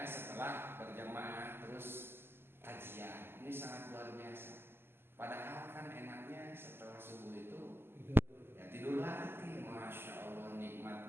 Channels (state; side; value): late; left; 0.11 ms